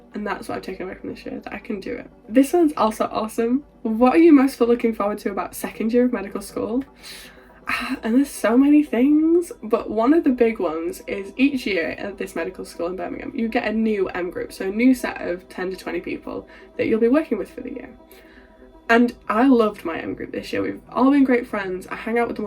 And that's what I've taken away from this year, that I can do it. This one's also awesome. What are you most looking forward to about 2nd year of medical school? And there's so many things, but one of the big ones is each year at this medical school in Birmingham, you get a new M group, so a new set of 10 to 20 people that you'll be working with for the year. And I loved my M group this year. We've all been great friends. I hang out with them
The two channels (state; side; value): identical; both; correlation 1.00